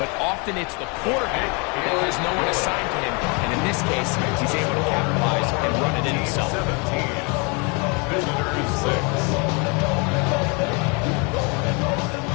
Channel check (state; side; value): quieter; right; 32.0 dB